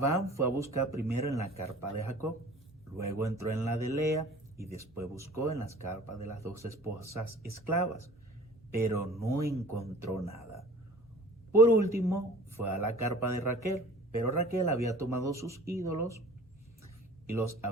fue a buscar primero en la carpa de Jacob, luego entró en la de Lea y después buscó en las carpas de las 2 esposas esclavas, pero no encontró nada. Por último, fue a la carpa de Raquel, pero Raquel había tomado sus ídolos y los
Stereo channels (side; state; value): both; normal; correlation 0.46